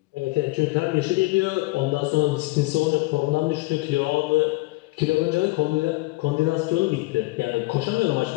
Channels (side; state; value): right; quieter; 22.3 dB